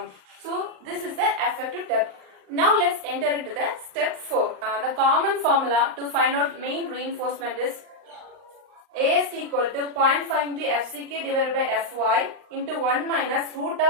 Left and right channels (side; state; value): left; late; 39 ms